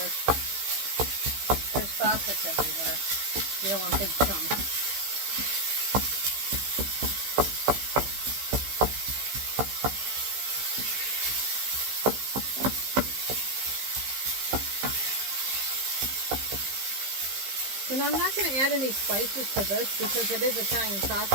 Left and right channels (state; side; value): late; left; 15 ms